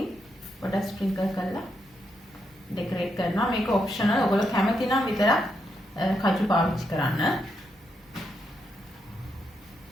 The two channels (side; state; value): both; normal; correlation 0.81